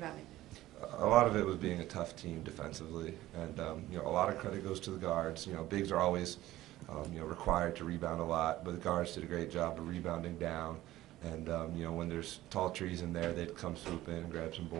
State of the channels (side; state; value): left; quieter; 15.7 dB